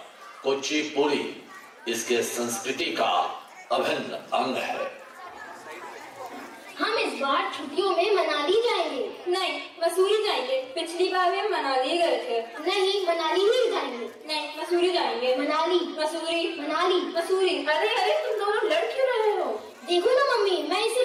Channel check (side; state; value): both; identical; correlation 1.00